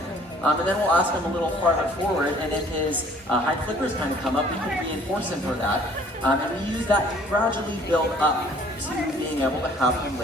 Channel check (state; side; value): normal; both; correlation 0.56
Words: And then we'll ask him a little farther forward, and if his hind flippers kind of come up, we can reinforce him for that. And we use that to gradually build up to being able to have him